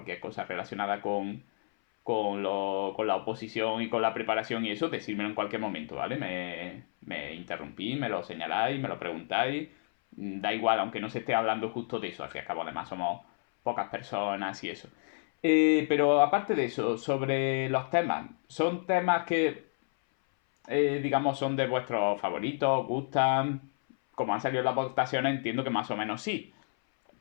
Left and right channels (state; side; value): silent; right; 57 dB below the other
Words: cosa relacionada con la oposición y con la preparación y eso, decírmelo en cualquier momento, ¿vale? Me interrumpís, me lo señaláis, me lo preguntáis. Da igual, aunque no se esté hablando justo de eso, al fin y al cabo, además somos pocas personas y eso. Pero aparte de eso, sobre los temas, ¿son temas que, digamos, son de vuestros favoritos, gustan? Como han salido las votaciones, entiendo que más o menos sí.